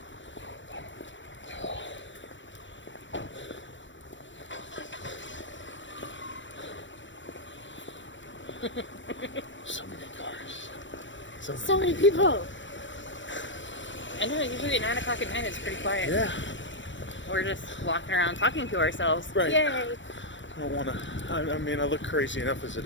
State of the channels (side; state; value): right; late; 0.54 ms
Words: So many cars. So many people. I know, usually at 9 o'clock at night it's pretty quiet. Yeah. We're just walking around talking to ourselves. Right. Yay. I don't want to. I mean, I look crazy enough as